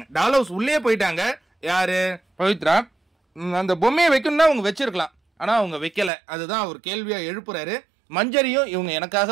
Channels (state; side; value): drops out; left; at 6.1 s